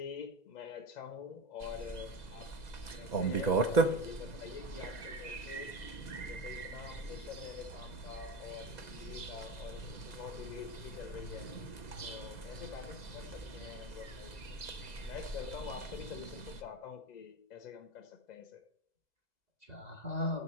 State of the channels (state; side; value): late; right; 2.0 ms